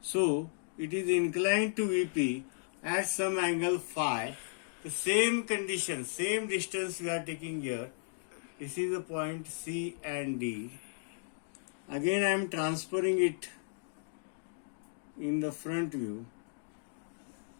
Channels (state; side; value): silent; right; digital silence